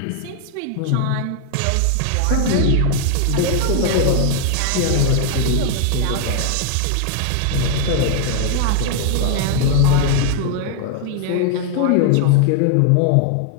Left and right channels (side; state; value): both; different; correlation 0.00